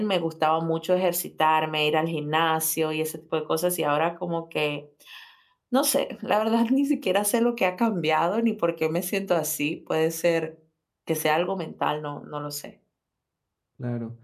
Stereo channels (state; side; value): identical; both; correlation 1.00